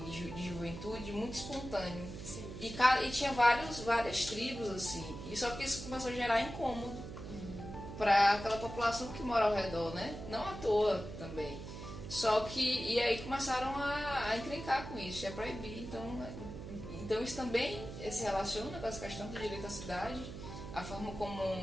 de juventude muito espontâneo. Sim. E tinha várias tribos assim. E só que isso começou a gerar incômodo para aquela população que mora ao redor, né? Não à toa também. Só que, e aí começaram a encrencar com isso, a proibir. Então isso também se relaciona com essa questão do direito à cidade, a forma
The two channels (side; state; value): right; noise; hum, 10 dB below the sound